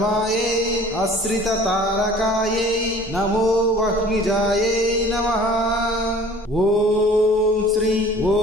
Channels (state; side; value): normal; both; correlation 0.49